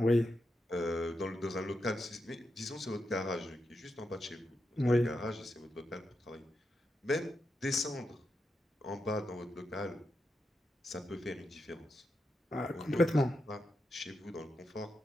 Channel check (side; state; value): both; normal; correlation 0.86